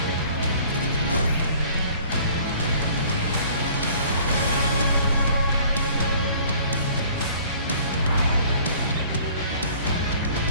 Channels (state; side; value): inverted; both; correlation -0.53